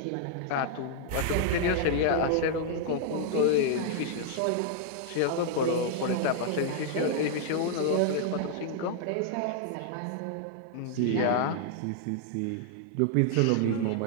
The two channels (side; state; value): both; different; correlation -0.01